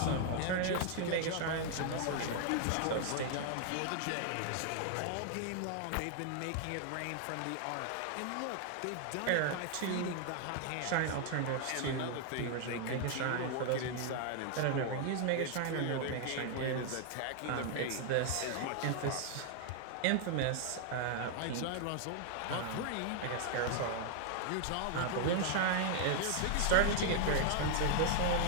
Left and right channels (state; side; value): different; both; correlation 0.00